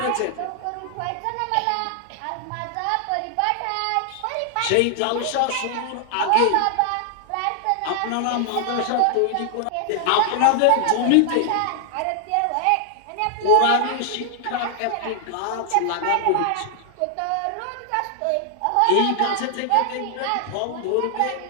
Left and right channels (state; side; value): different; both; correlation 0.00